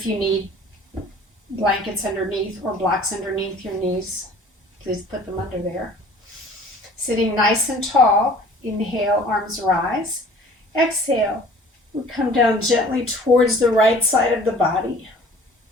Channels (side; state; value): both; normal; correlation 0.49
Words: you need blankets underneath or blocks underneath your knees, please put them under there. Sitting nice and tall. Inhale, arms rise. Exhale, we come down gently towards the right side of the body.